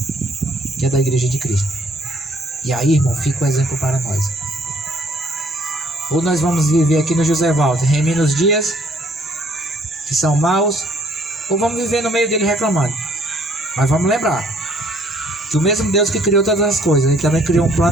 que é da Igreja de Cristo. E aí, irmão, fica o exemplo para nós. Ou nós vamos viver aqui no José Walter, remindo os dias que são maus, ou vamos viver no meio dele reclamando. Mas vamos lembrar que o mesmo Deus que criou todas as coisas, Ele também criou um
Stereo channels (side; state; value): both; normal; correlation 0.62